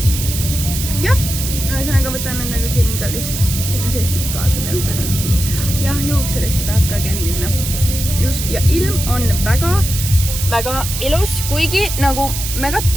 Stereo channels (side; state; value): right; noise; hiss, 5 dB below the sound